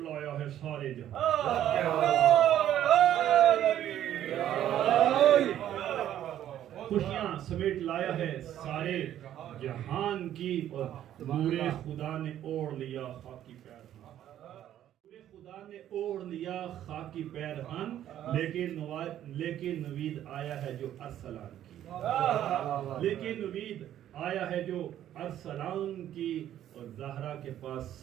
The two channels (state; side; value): quieter; left; 11.5 dB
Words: ہے سارے جہاں، خوشیاں سمیٹ لایا ہے سارے جہان کی، اور نور خدا نے اوڑھ لیا خاکی پیرہن، نور خدا نے اوڑھ لیا خاکی پیرہن، لیکن نوید آیا ہے جو ارسلان کی، لیکن نوید آیا ہے جو ارسلان کی، اور زہرا کے پاس